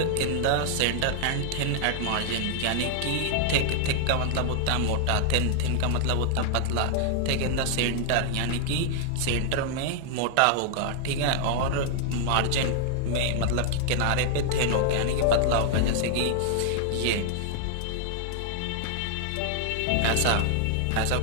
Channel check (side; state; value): both; different; correlation 0.00